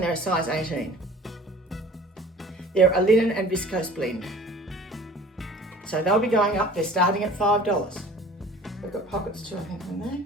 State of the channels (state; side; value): normal; both; correlation 0.46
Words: they're a size 18. They're a linen and viscose blend. So they'll be going up, they're starting at $5. They've got pockets too, I think, in there.